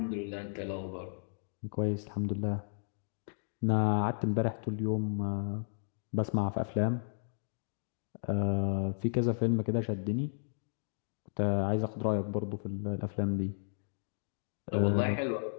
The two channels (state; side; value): silent; right; digital silence